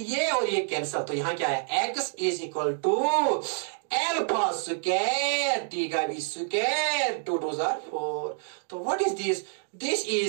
और ये कैंसिल. तो यहाँ क्या है? x is equal to alpha square t का भी square 2 2s are 4. तो what is this? This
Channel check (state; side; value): silent; left; 59 dB below the other